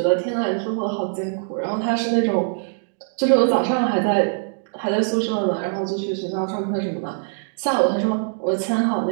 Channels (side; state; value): left; silent; digital silence